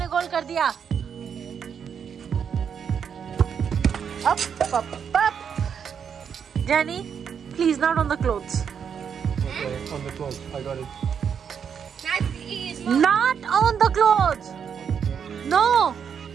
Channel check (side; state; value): left; quieter; 7.4 dB